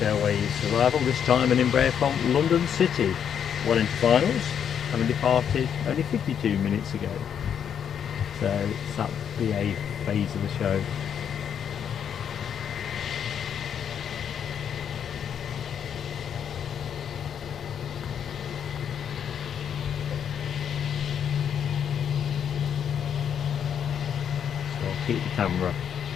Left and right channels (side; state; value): right; quieter; 8.3 dB